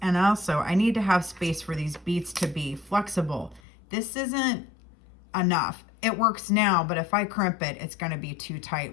And also, I need to have space for these beads to be flexible. This isn't enough. It works now, but if I crimp it, it's going to be too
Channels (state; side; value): drops out; right; at 3.6 s